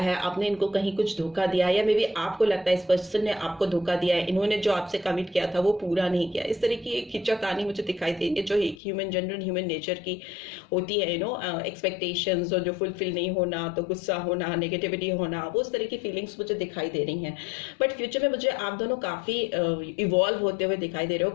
आपने इनको कहीं कुछ धोखा दिया है, या मे बी आपको लगता है इस पर्सन ने आपको धोखा दिया है, इन्होंने जो आपसे कमिट किया था वो पूरा नहीं किया। इस तरह की एक खिंचा कहानी मुझे दिखाई देती है जो एक जनरल ह्यूमन नेचर की होती है, एक्सपेक्टेशंस और जो फुलफिल नहीं होना, तो गुस्सा होना, नेगेटिविटी होना, वो उस तरह की फीलिंग्स मुझे दिखाई दे रही हैं। बट फ्यूचर में मुझे आप दोनों काफ़ी इवॉल्व होते हुए दिखाई दे रहे हो,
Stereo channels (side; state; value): right; drops out; at 8.8 s